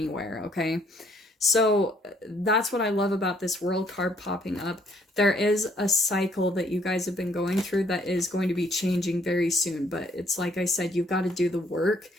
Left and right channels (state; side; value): normal; both; correlation 0.66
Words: okay? So that's what I love about this World card popping up. There is a cycle that you guys have been going through that is going to be changing very soon, but it's like I said, you've got to do the work.